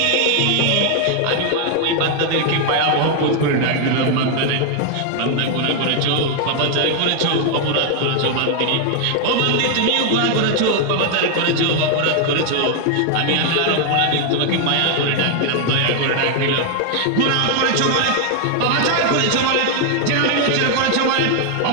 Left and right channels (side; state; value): both; different; correlation 0.00